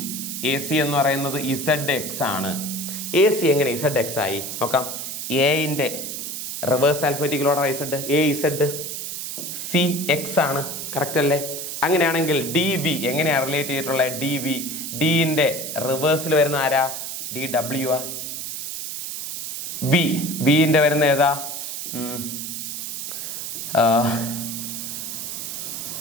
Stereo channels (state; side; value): noise; right; hiss, 6 dB below the sound